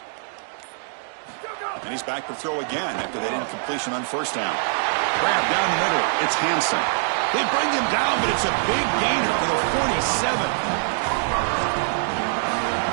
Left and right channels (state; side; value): silent; left; digital silence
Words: And he's back to throw again after that incompletion on first down. Grab down the middle. It's Hansen. They bring him down, but it's a big gainer for the 47.